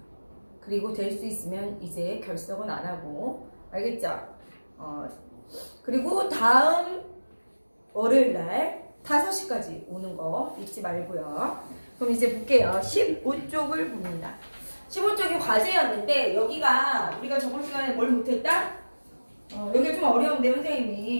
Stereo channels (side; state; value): both; inverted; correlation -1.00